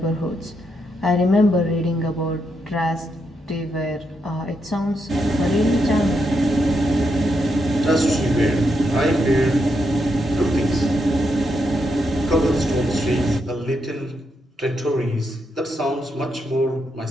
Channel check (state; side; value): normal; both; correlation 0.81